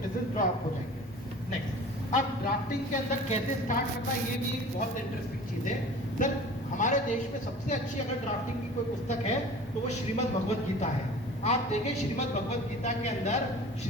ड्रॉप हो जाएंगे। नेक्स्ट, अब ड्राफ्टिंग के अंदर कैसे स्टार्ट करना, ये भी बहुत इंटरेस्टिंग चीज़ है। सर हमारे देश में सबसे अच्छी अगर ड्राफ्टिंग की कोई पुस्तक है तो वो श्रीमद् भगवत गीता है। आप देखें श्रीमद् भगवत गीता के अंदर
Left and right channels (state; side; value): normal; both; correlation 0.42